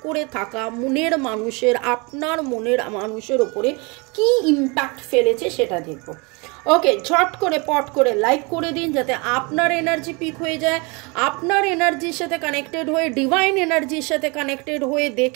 করে থাকা মনের মানুষের, আপনার মনের মানুষের ওপরে কি ইম্প্যাক্ট ফেলেছে সেটা দেখব। ওকে, ঝট করে পট করে লাইক করে দিন যাতে আপনার এনার্জি পিক হয়ে যায়। আপনার এনার্জির সাথে কানেক্টেড হয়ে, ডিভাইন এনার্জির সাথে কানেক্টেড হয়ে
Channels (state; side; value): quieter; left; 29.1 dB